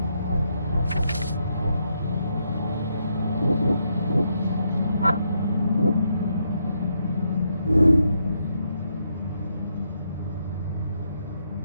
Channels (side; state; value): both; inverted; correlation -0.78